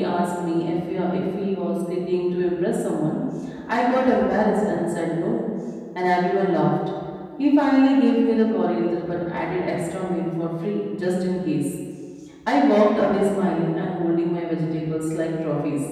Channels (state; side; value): identical; both; correlation 1.00